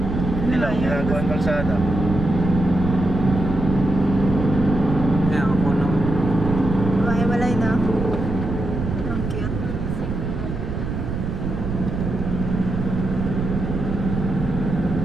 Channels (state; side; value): noise; right; rumble, 4 dB below the sound